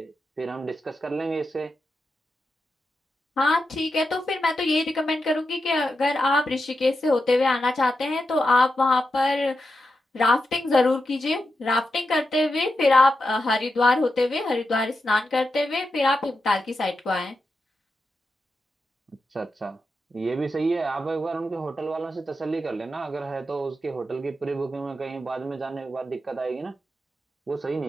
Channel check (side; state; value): both; normal; correlation 0.88